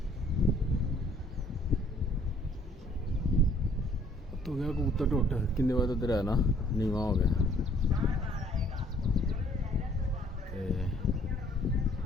तो गया कबूतर टुट किन्ने बजे उधर है ना नीवा हो गया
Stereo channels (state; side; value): normal; both; correlation 0.60